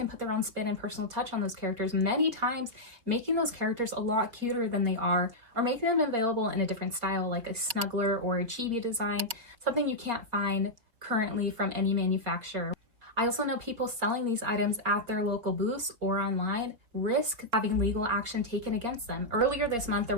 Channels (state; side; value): late; left; 4.0 ms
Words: put their own spin and personal touch on those characters, many times making those characters a lot cuter than they are, or making them available in a different style like a snuggler or a chibi design, something you can't find currently from any manufacturer. I also know people selling these items at their local booths or online risk having legal action taken against them. Earlier this month, there